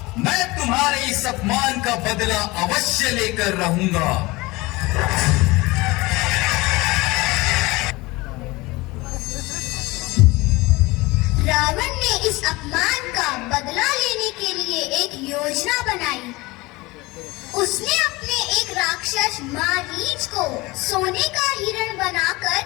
मैं तुम्हारे इस अपमान का बदला अवश्य लेकर रहूंगा। रावण ने इस अपमान का बदला लेने के लिए एक योजना बनाई। उसने अपने एक राक्षस मारीच को सोने का हिरण बनाकर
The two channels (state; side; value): quieter; right; 22.2 dB